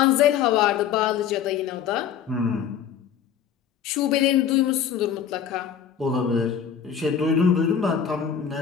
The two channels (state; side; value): quieter; right; 8.2 dB